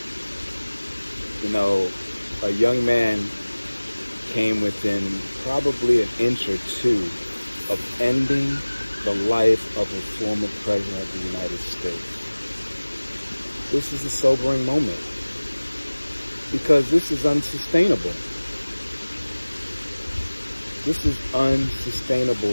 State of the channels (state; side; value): inverted; both; correlation -1.00